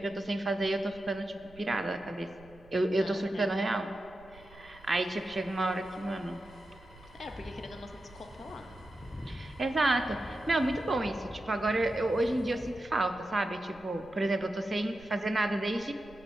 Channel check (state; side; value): noise; right; rumble, 23 dB below the sound